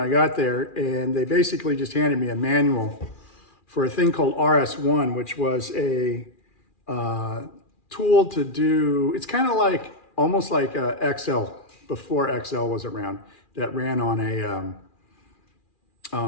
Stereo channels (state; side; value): late; right; 2.4 ms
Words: got there. And they basically just handed me a manual for a thing called RS1, which was a tool to do, it's kind of like, almost like Excel, before Excel was around, that ran on